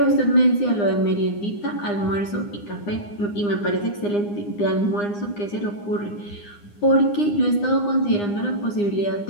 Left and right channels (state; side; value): late; right; 9.8 ms